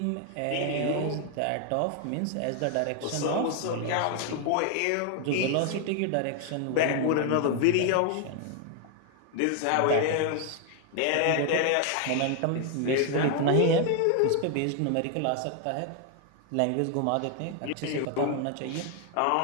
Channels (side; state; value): both; different; correlation 0.00